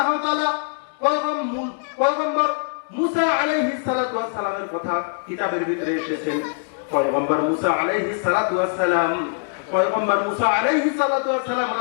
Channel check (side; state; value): right; silent; digital silence